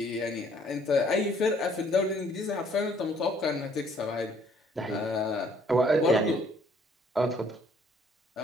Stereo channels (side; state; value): both; normal; correlation 0.62